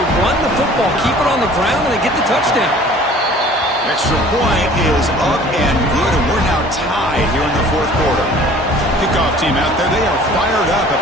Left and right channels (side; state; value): both; normal; correlation 0.49